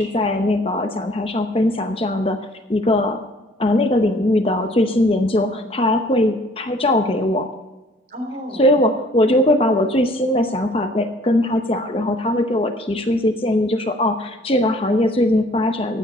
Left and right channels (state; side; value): normal; both; correlation 0.56